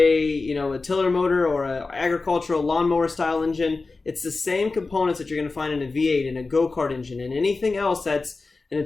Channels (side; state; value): right; quieter; 3.8 dB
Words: tiller motor or an agricultural lawnmower style engine, it's the same components that you're going to find in a V8 and a go-kart engine and anything else that's an